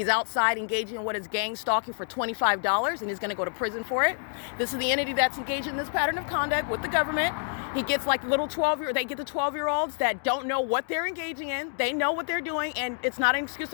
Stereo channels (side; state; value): right; silent; digital silence